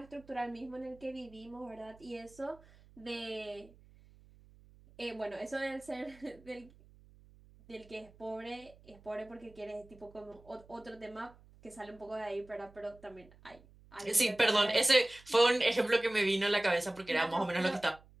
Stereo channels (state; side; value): noise; right; hum, 25 dB below the sound